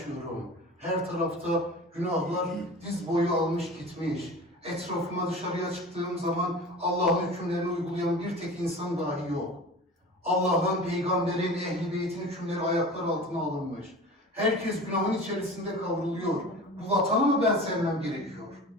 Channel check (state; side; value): normal; both; correlation 0.37